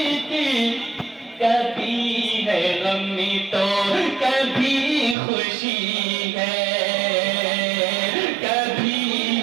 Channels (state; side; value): drops out; left; at 5.2 s